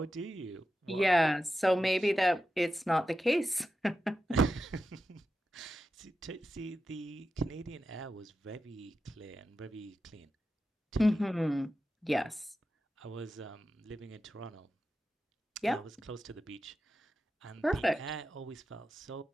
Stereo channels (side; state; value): both; normal; correlation 0.91